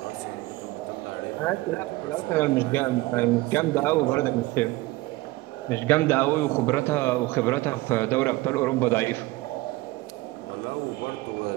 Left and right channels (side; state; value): left; quieter; 19.7 dB